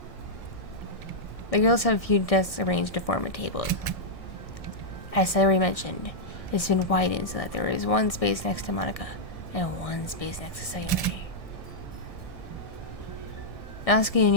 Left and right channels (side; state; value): right; late; 1.7 ms